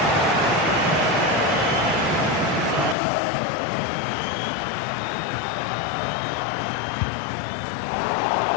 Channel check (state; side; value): drops out; right; at 3.0 s